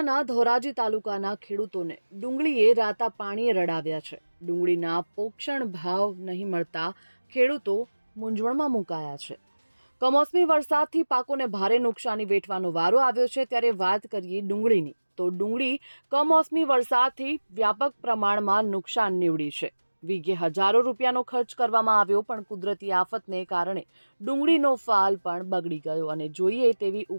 ધોરાજી તાલુકાના ખેડૂતોને ડુંગળીએ રાતા પાણીએ રડાવ્યા છે. ડુંગળીના પોષણ ભાવ નહીં મળતા ખેડૂતો મૂંઝવણમાં મુકાયા છે. કમોસમી વરસાદથી પાકોને ભારે નુકસાની વેઠવાનો વારો આવ્યો છે. ત્યારે વાત કરીએ ડુંગળીની, તો ડુંગળી કમોસમી વરસાદથી વ્યાપક પ્રમાણમાં નુકસાન નીવડી છે. વીઘે હજારો રૂપિયાનો ખર્ચ કરવામાં આવ્યો, પણ કુદરતી આફતને કારણે ડુંગળીનો ફાલ પણ બગડી ગયો અને જોઈએ તેવી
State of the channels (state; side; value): inverted; both; correlation -1.00